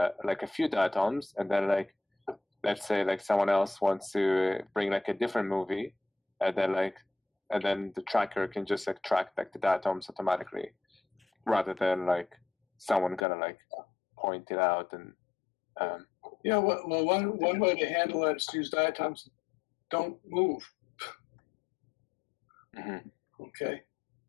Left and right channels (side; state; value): right; drops out; at 13.2 s